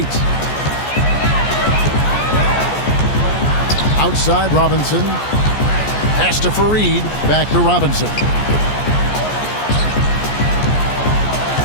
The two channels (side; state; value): right; late; 14 ms